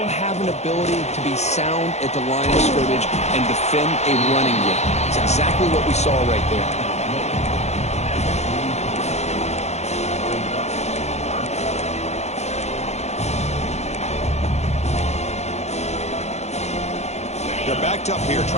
have an ability to be sound at the line of scrimmage and defend a running game. It's exactly what we saw right there. They're backed up here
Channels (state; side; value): late; right; 0.32 ms